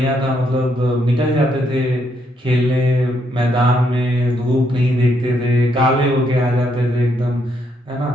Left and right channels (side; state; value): both; normal; correlation 0.75